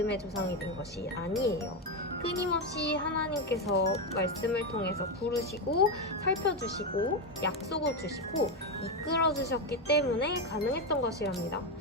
조상이 된 것이 아니에요. 끊임없이 하나님께서 말씀을 통해서 부르시고 살펴주시고 약속을 주시고 이끌어 주셨기 때문에 가능했던 것이랍니다.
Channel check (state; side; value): normal; both; correlation 0.10